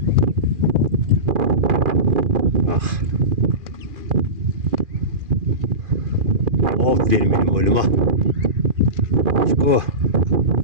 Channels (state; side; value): late; left; 2.4 ms